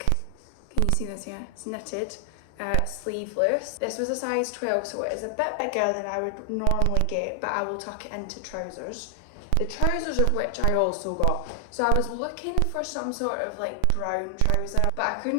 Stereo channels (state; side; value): different; both; correlation 0.00